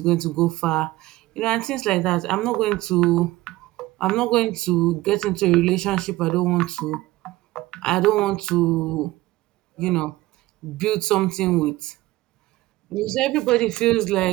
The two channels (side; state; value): left; quieter; 18.1 dB